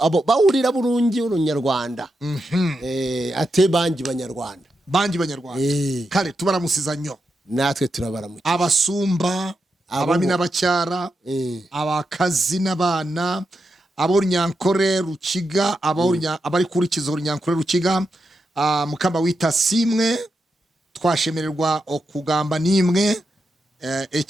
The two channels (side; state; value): both; normal; correlation 0.86